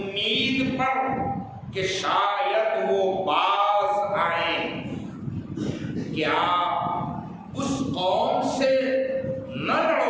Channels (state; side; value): identical; both; correlation 1.00